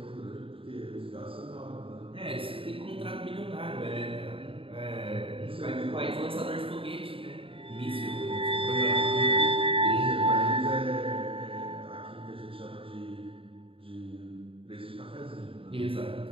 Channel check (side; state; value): left; late; 0.26 ms